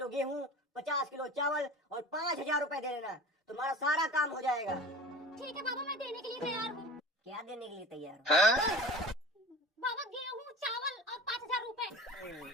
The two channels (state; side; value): normal; both; correlation 0.36